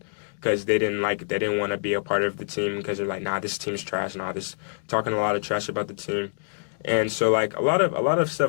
because they didn't want to be a part of the team because they're like, nah, this team's trash. Nah, this talking a lot of trash about the team. And so like a lot of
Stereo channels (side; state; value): right; silent; digital silence